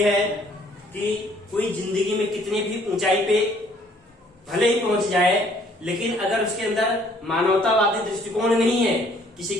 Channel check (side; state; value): both; normal; correlation 0.61